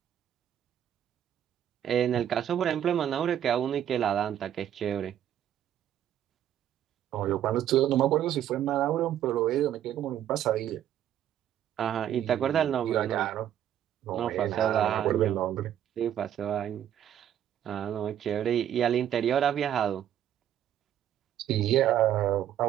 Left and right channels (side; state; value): left; quieter; 10.7 dB